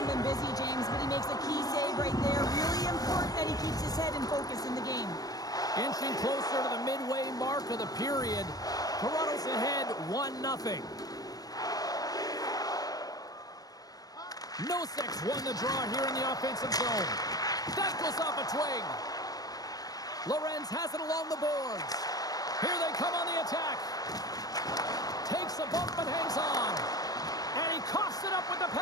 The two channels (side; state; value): right; late; 0.18 ms